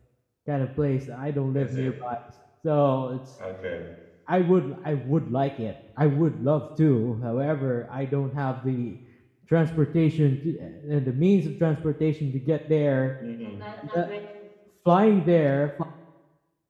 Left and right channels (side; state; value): both; identical; correlation 1.00